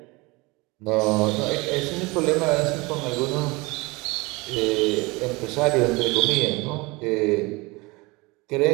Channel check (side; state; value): left; quieter; 24.4 dB